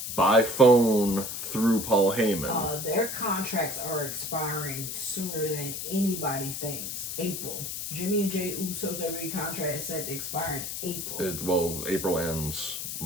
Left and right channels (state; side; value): noise; left; hiss, 5 dB below the sound